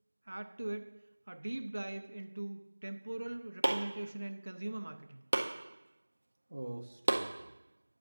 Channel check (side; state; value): both; inverted; correlation -1.00